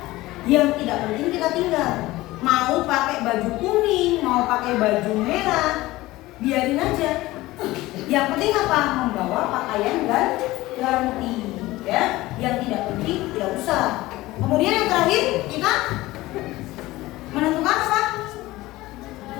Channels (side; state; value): right; quieter; 18.3 dB